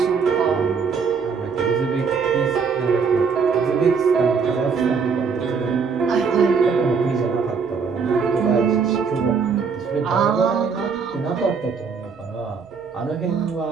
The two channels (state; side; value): quieter; left; 5.6 dB